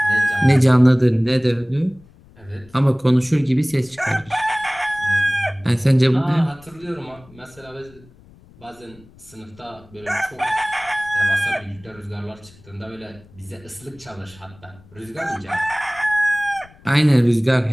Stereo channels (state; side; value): noise; left; rumble, 25 dB below the sound